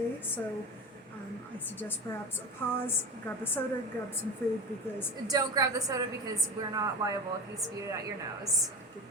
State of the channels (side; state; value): both; normal; correlation 0.27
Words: so I suggest perhaps a pause, grab a soda, grab some food, because... Don't grab the soda because we're not liable if you spew it out your nose. Good